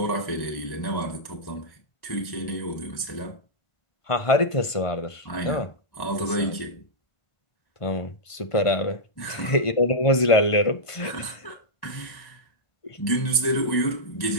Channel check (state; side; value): late; right; 1.5 ms